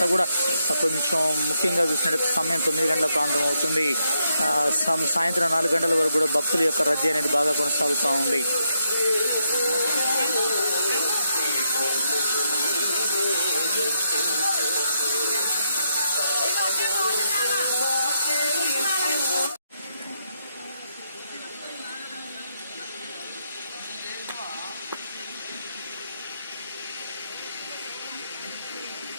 కూడా కొంచెం ముఖ్యంగా చూసినట్టు సమయం 9 గంటల ప్రాంతం అవుతుంది. సాయంత్రం 4 గంటల వరకు కూడా భక్తుల యొక్క రద్దీ అనేది బాగా కొనసాగుతూ ఉంది.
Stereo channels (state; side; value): inverted; both; correlation -0.79